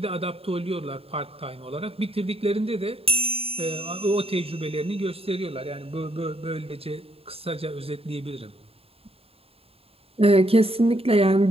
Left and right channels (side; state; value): left; late; 0.28 ms